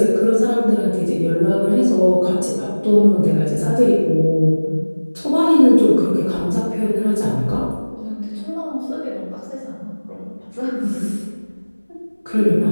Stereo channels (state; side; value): inverted; both; correlation -1.00